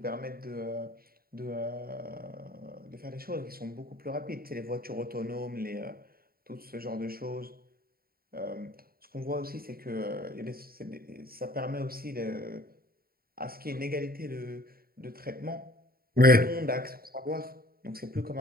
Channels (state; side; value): late; left; 0.43 ms